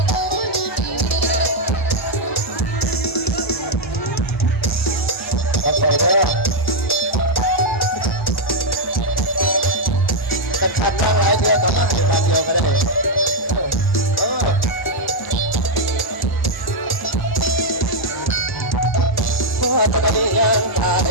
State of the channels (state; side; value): normal; both; correlation -0.01